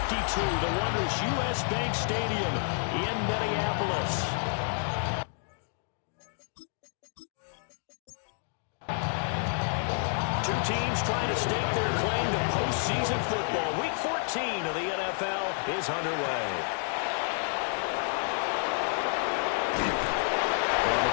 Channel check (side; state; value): right; silent; 58 dB below the other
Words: the wondrous U.S. Bank Stadium in Minneapolis. Two teams trying to stake their claim to postseason football. Week 14 of the NFL is underway. And